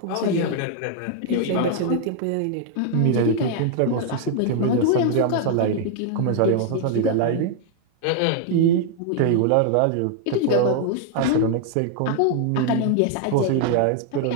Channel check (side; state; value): both; different; correlation 0.00